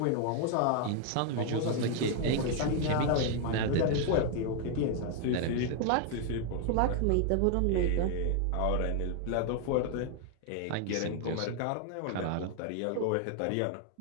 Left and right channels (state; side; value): different; both; correlation 0.00